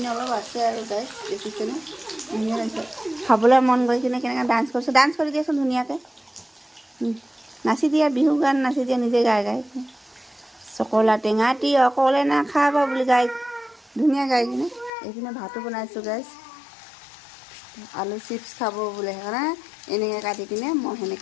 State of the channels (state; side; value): drops out; right; at 14.9 s